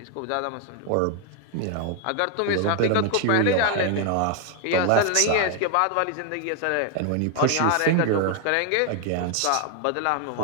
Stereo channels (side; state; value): both; different; correlation 0.00